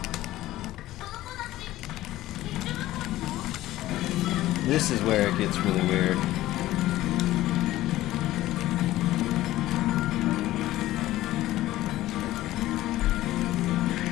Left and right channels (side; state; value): right; quieter; 15.6 dB